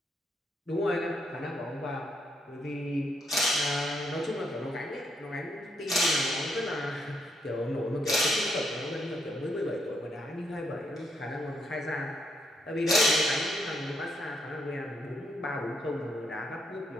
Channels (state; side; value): normal; both; correlation 0.76